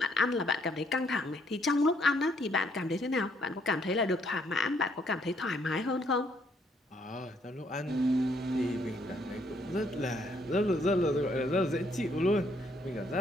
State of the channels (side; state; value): both; normal; correlation 0.69